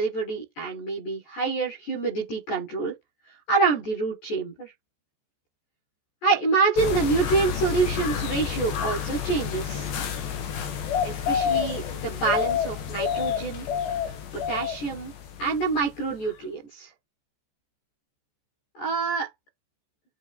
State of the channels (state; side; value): late; right; 14 ms